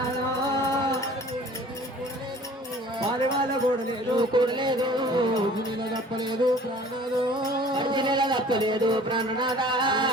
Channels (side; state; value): both; normal; correlation 0.48